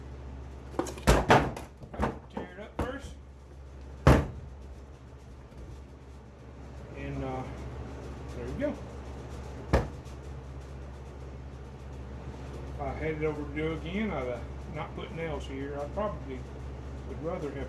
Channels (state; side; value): identical; both; correlation 1.00